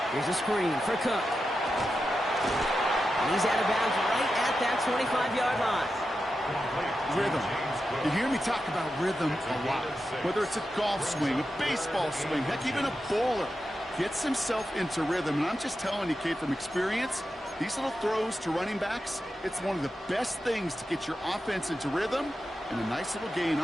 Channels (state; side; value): normal; both; correlation 0.90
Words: Here's a screen for Cook. And he's out of bounds right at that 25-yard line. Rhythm. You hear me talk about rhythm a lot. Whether it's a golf swing, a baseball swing, heck, even a bowler gets himself into rhythm. And I'm just telling you, kid, from experience, these little throws to running backs, it's one of the best things to get your offense into rhythm and a nice little gain